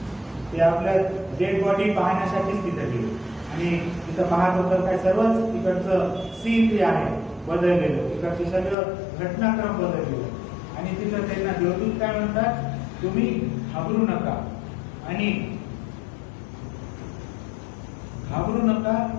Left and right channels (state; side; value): drops out; right; at 8.8 s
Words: ते आपल्या डेड बॉडी पाहण्यासाठीच तिथं गेले आणि तिथं पाहत होतं काय, सर्वच तिकडचं सीन जे आहे बदललेलं, तिकडचे सगळं घटनाक्रम बदललेलं. आणि तिथं त्यांना देवदूत काय म्हणतात, तुम्ही घाबरू नका